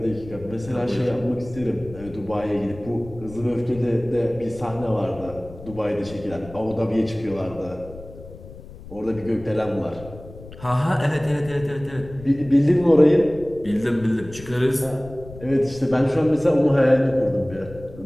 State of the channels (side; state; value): left; noise; rumble, 17 dB below the sound